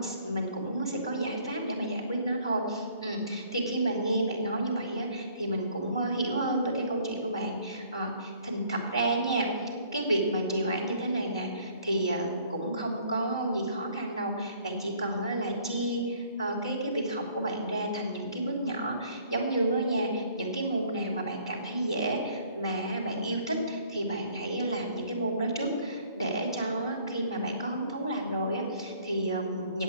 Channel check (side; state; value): both; inverted; correlation -0.59